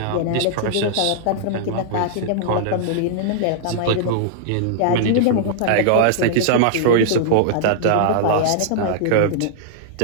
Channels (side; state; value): both; different; correlation -0.01